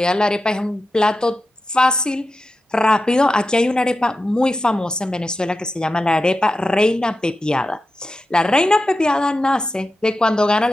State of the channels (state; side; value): normal; both; correlation 0.91